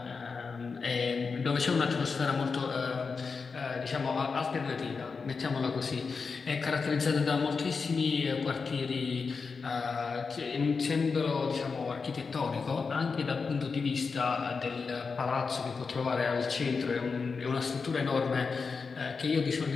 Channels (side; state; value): right; quieter; 4.9 dB